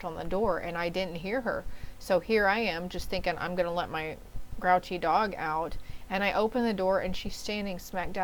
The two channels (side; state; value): both; identical; correlation 1.00